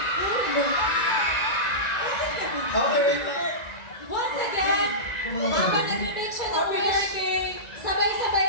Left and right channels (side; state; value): right; late; 1.9 ms